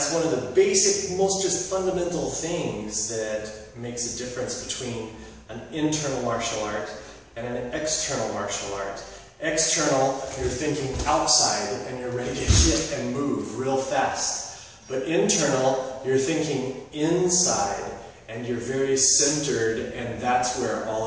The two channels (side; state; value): both; identical; correlation 1.00